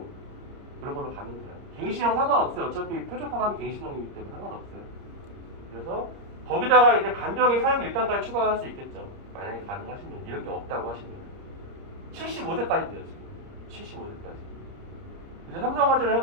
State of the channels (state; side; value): late; left; 30 ms